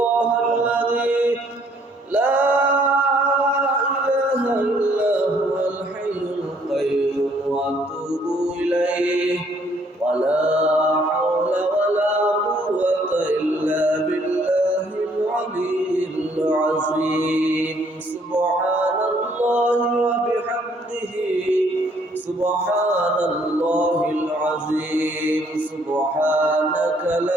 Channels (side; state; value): both; normal; correlation 0.64